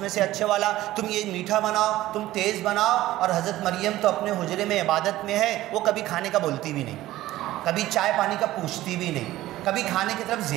میں سے اچھے والا، تم یہ میٹھا بناؤ، تم تیز بناؤ۔ اور حضرت مریم تو اپنے حجرے میں عبادت میں ہے، وہ کبھی کھانے کا بولتی بھی نہیں، کبھی چائے پانی کا پوچھتی بھی نہیں، کبھی کھانے کی طرف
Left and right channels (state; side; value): quieter; left; 15.6 dB